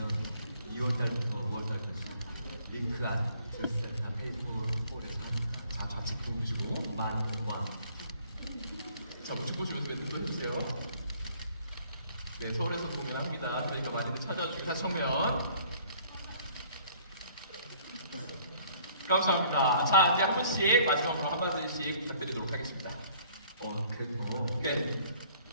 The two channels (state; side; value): inverted; both; correlation -0.58